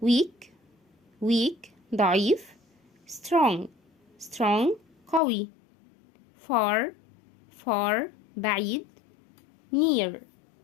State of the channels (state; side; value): drops out; right; at 5.2 s